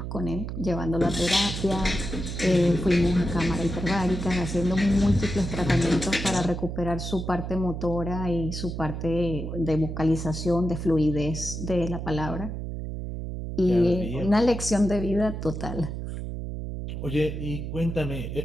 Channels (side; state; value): right; noise; hum, 5 dB below the sound